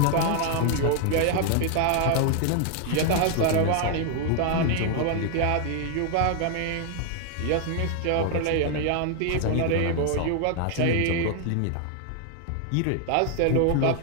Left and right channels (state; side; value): different; both; correlation 0.00